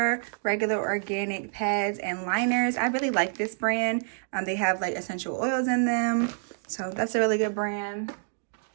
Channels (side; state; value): left; silent; digital silence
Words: regular organic pads and liners. I really like this brand. They have like essential oils in them, so that's a really good brand.